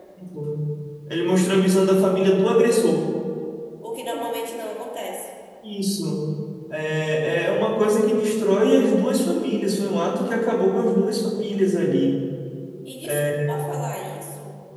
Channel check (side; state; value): both; identical; correlation 1.00